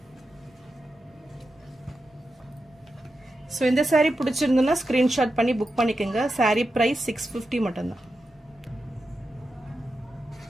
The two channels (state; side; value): normal; both; correlation 0.89